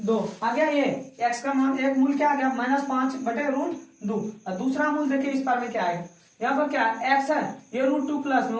आ गया, ये x का मान एक मूल क्या आ गया -5 बटे √2, और दूसरा मूल देखिए इस पर में क्या आएगा, यहाँ पर क्या x है ये √2 प्लस में,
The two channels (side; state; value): both; identical; correlation 1.00